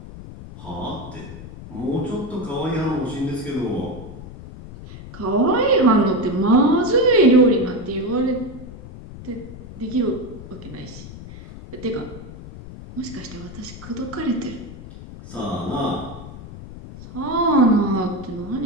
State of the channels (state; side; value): noise; left; rumble, 14 dB below the sound